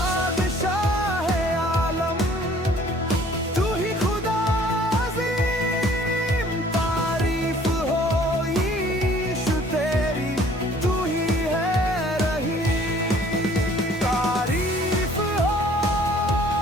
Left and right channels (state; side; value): normal; both; correlation 0.55